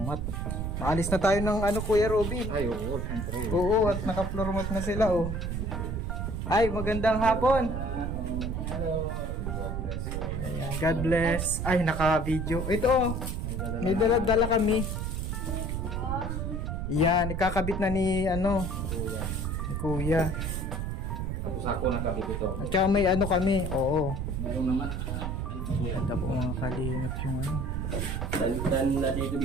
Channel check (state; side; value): noise; right; rumble, 2 dB below the sound